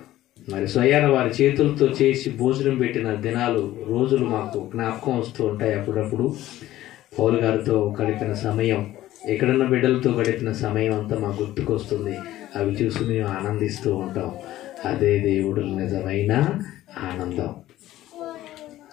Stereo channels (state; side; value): quieter; right; 14.7 dB